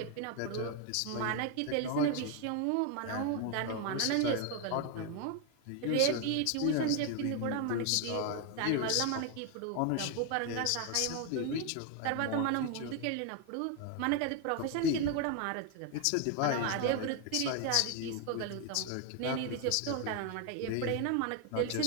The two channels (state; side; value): different; both; correlation 0.01